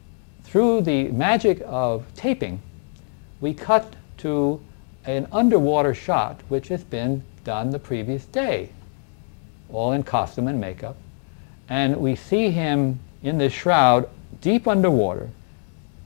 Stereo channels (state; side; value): silent; right; 57 dB below the other